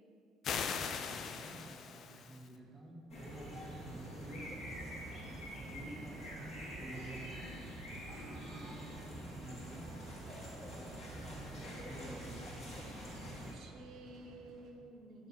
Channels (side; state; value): both; normal; correlation 0.65